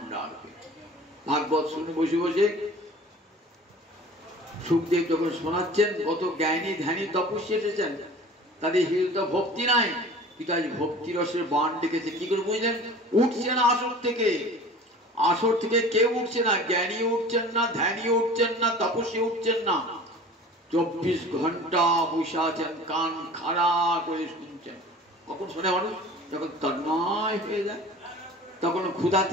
ডাকবে। ভাগবত শুনে বসে বসে সুখদেব যখন শোনাচ্ছেন, কত জ্ঞানী ধ্যানী তপস্বী এসেছেন, তাদের হৃদয় ভক্তি নাই, কিন্তু আজ ভক্তি রসের বান ডেকেছে। কি করে বুঝলেন? উঠছে না আসর থেকে, আসর থেকে কেউ উঠছে না, জ্ঞানী উঠছেন না, ধ্যানী উঠছেন না, তপস্বী উঠছেন না, 24 ঘন্টা বসে আছেন, কান খাড়া করে শুনছেন। কখন শোনে মানুষ? যখন তন্ময় হয়ে যায়, তখন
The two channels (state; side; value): normal; both; correlation 0.42